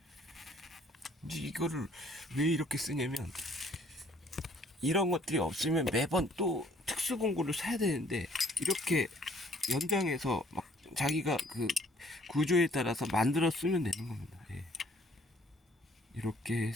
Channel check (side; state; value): both; normal; correlation 0.59